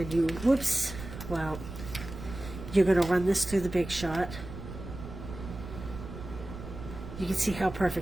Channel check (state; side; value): noise; right; rumble, 11 dB below the sound